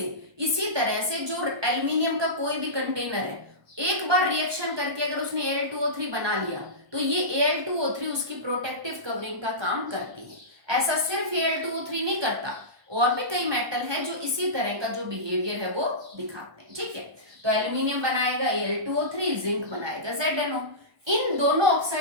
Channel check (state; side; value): late; left; 1.2 ms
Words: इसी तरह से जो एल्यूमिनियम का कोई भी कंटेनर है एक बार रिएक्शन करके अगर उसने Al2O3 बना लिया तो ये Al2O3 उसकी प्रोटेक्टिव कवरिंग का काम करती है। ऐसा सिर्फ Al2O3 नहीं करता, और भी कई मेटल हैं जो इसी तरह का जो बिहेवियर है वो दिखाते हैं। ठीक है, तो एल्यूमिनियम बनाएगा Al2O3, जिंक बनाएगा ZnO। इन दोनों